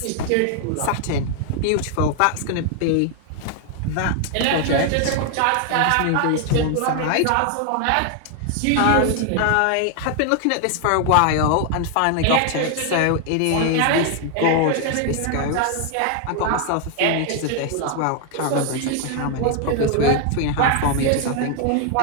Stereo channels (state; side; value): different; both; correlation 0.00